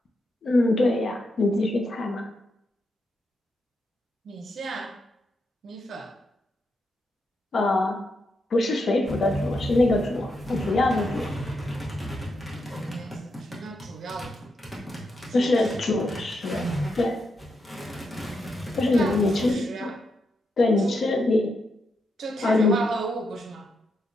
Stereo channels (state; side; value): normal; both; correlation 0.83